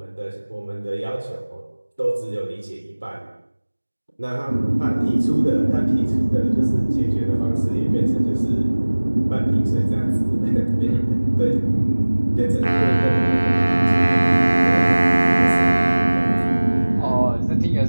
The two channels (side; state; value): both; inverted; correlation -1.00